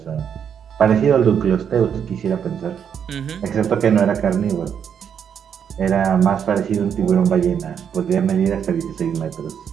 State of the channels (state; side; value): quieter; left; 8.0 dB